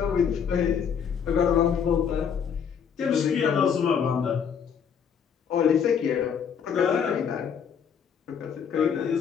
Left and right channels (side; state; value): right; quieter; 7.3 dB